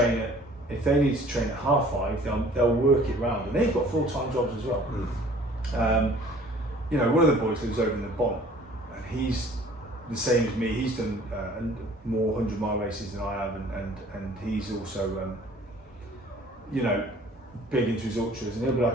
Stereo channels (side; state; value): both; normal; correlation 0.52